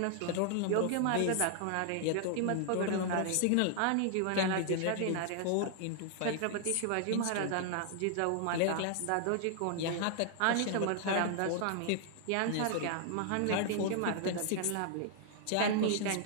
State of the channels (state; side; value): different; both; correlation 0.00